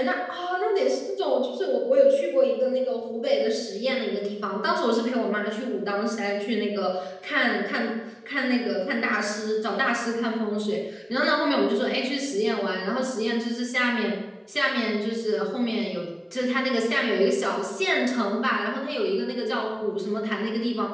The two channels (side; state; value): both; identical; correlation 1.00